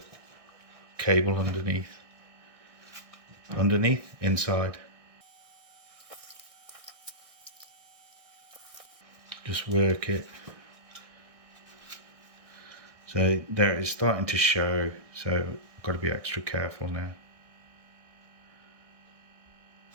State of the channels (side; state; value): left; late; 1.6 ms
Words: cable inside. Just work it. So there it's starting to show, so I've got to be extra careful now.